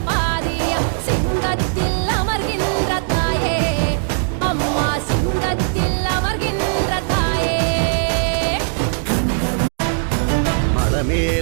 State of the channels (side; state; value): left; silent; digital silence